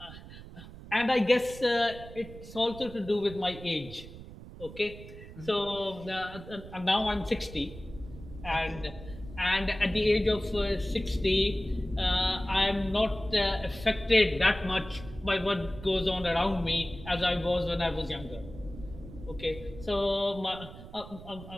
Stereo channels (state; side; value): noise; right; rumble, 15 dB below the sound